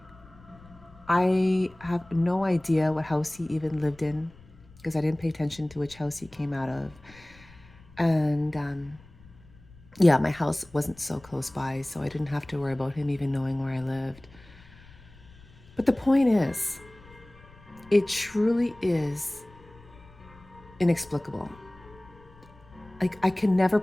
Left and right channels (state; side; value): noise; left; rumble, 23 dB below the sound